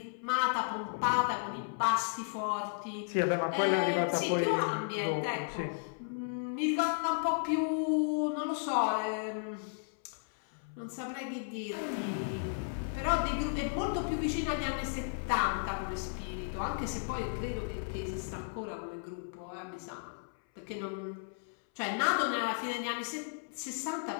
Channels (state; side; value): silent; right; 55 dB below the other